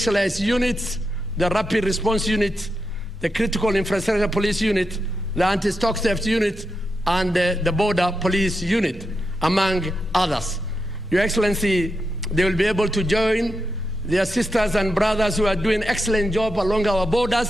units, the Rapid Response Unit, the Critical Infrastructure Police Unit, the Anti-Stock Theft Unit, and the Border Police Unit, among others. Your Excellency, they will be able to join their sisters and brothers who are doing excellent job along our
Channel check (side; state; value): both; normal; correlation 0.86